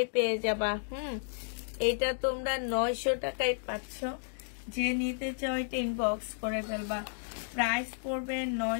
পেয়ে যাবা। এটা তোমরা 900 টাকায় পাচ্ছ। যে নিতে চাও এটা ইনবক্স করে ফেলবা। প্রাইস পড়বে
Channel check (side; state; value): right; silent; digital silence